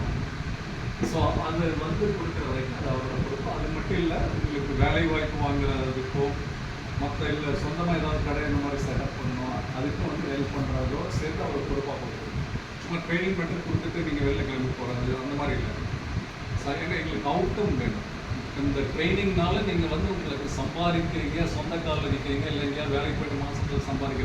ஸோ அது வந்து கொடுக்குற வரைக்கும் அது அவரோட பொறுப்பு. அது மட்டும் இல்லை, உங்களுக்கு வேலை வாய்ப்பு வாங்குறதுக்கோ மற்ற இல்லை சொந்தமாக ஏதாவது கடை இந்த மாதிரி செட்டப் பண்ணணும் அதுக்கும் வந்து ஹெல்ப் பண்ணுறதோ சேர்த்து அவர் பொறுப்பாக கொடுக்கணும். சும்மா ட்ரைனிங் மட்டும் கொடுத்துட்டு நீங்கள் வெளில கிளம்பி போகிறது அந்த மாதிரி இல்லை. ஏன்னா எங்களுக்கு அவுட்கம் வேணும். இந்த ட்ரைனிங்னால நீங்கள் வந்து உங்களுக்கு சம்பாதிக்கிறீங்க, சொந்த காலில் நிற்கிறீங்க, இல்லை எங்கேயாவது வேலைக்கு போய்ட்டு மாதத்தில்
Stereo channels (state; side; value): identical; both; correlation 1.00